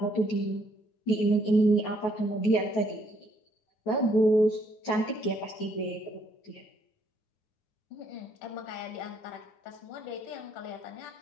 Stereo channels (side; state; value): right; late; 9.3 ms